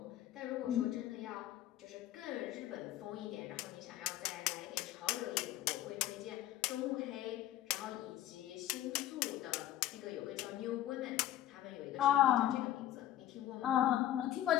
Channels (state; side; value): quieter; right; 13.0 dB